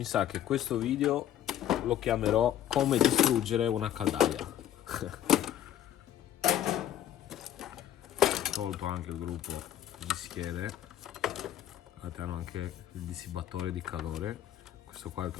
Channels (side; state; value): right; quieter; 11.4 dB